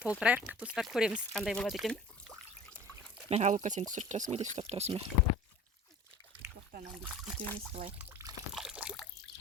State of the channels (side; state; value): both; normal; correlation 0.43